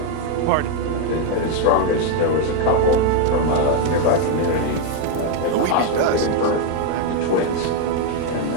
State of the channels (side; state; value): both; different; correlation 0.01